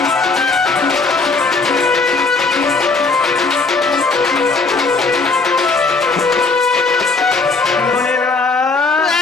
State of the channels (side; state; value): right; quieter; 4.0 dB